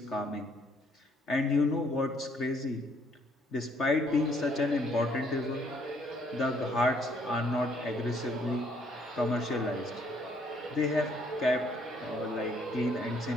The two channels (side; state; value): both; normal; correlation 0.66